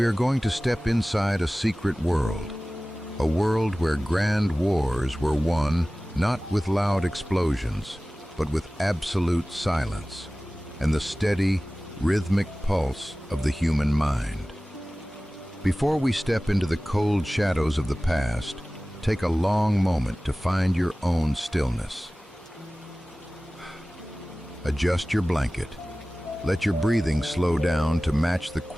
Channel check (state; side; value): normal; both; correlation 0.97